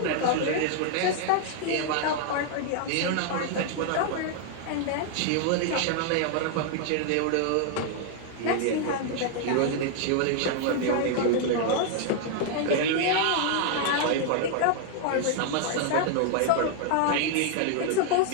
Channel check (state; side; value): different; both; correlation 0.00